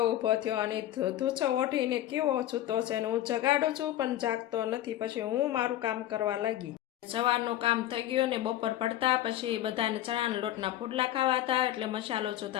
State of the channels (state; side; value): quieter; right; 13.4 dB